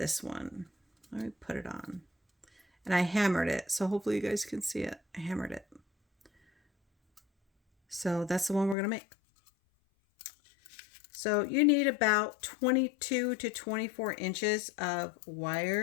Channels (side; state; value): right; drops out; at 8.8 s